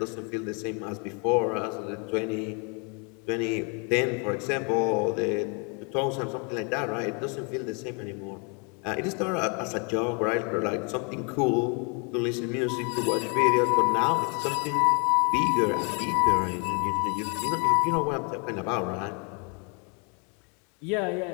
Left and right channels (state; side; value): quieter; right; 34.7 dB